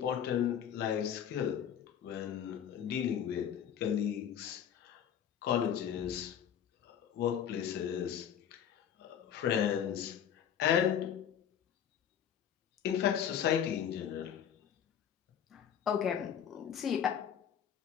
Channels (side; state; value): right; quieter; 9.0 dB